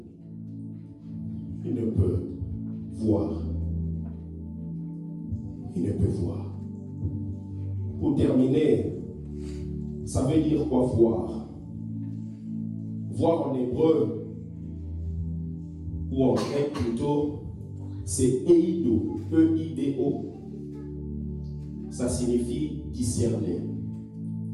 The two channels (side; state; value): both; identical; correlation 1.00